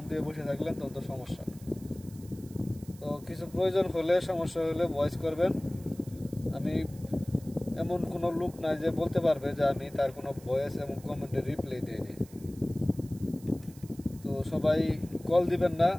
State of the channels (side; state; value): right; noise; hiss, 23 dB below the sound